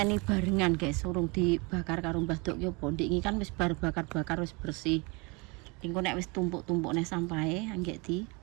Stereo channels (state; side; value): quieter; left; 28.5 dB